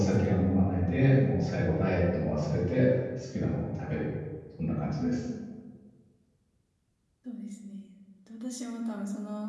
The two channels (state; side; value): identical; both; correlation 1.00